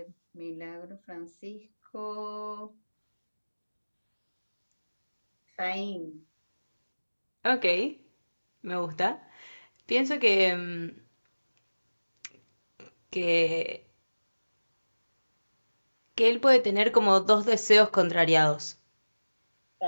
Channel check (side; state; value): both; inverted; correlation -1.00